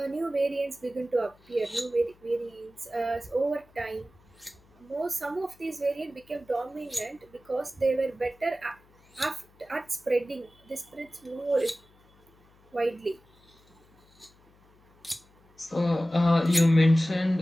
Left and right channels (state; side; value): noise; left; hum, 30 dB below the sound